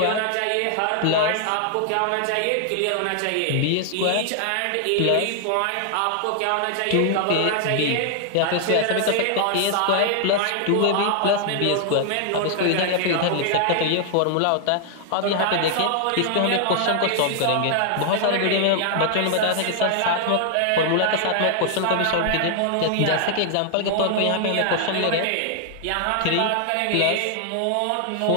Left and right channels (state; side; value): different; both; correlation 0.00